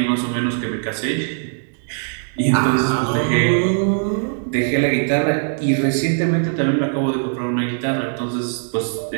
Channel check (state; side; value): silent; left; digital silence